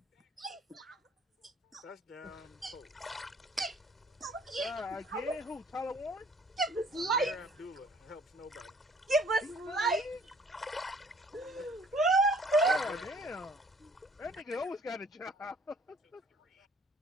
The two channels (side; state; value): both; normal; correlation 0.56